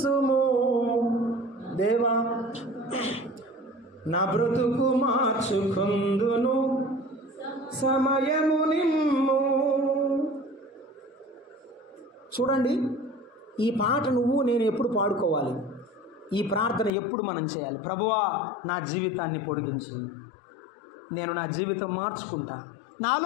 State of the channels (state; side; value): drops out; right; at 16.9 s